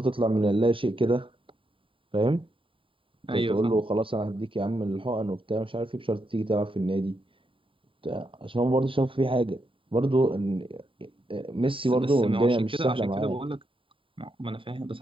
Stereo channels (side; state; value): left; late; 0.25 ms